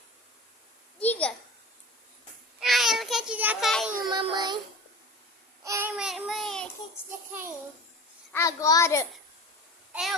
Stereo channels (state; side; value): normal; both; correlation 0.35